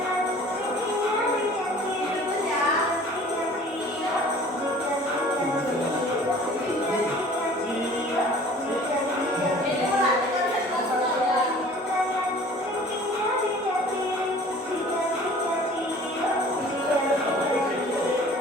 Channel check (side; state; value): both; normal; correlation 0.48